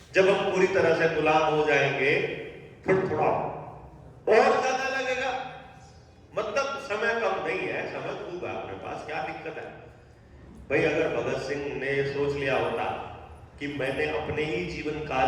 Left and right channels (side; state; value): both; identical; correlation 1.00